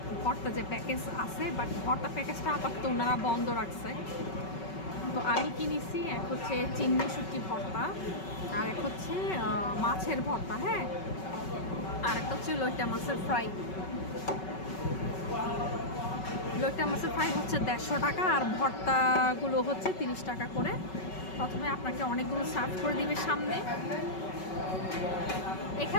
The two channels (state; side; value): late; right; 5.3 ms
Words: ভর্তা যে প্যাকেজ আছে, বাট ভর্তা প্যাকেজটা আপাতত ওনারা বন্ধ রাখছে। তো আমি কিনেছি এক হচ্ছে চিংড়ি শুটকি ভর্তা, আর এক হচ্ছে মাছের ভর্তা, হ্যাঁ, আর একটা হচ্ছে লইটা মাছের ফ্রাই। লইটা মাছের ফ্রাই হচ্ছে 150 টাকা, আর ভর্তাগুলো হচ্ছে 30 টাকা করে। প্রথমে আপনাকে অনেকগুলো সার্ভ করে দিবে সামনে,